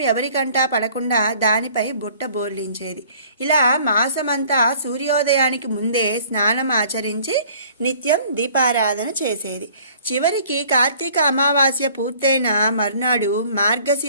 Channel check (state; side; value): inverted; both; correlation -0.54